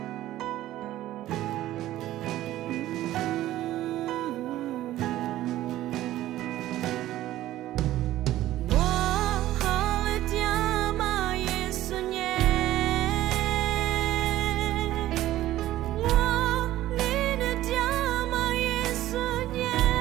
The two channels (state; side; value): quieter; left; 14.5 dB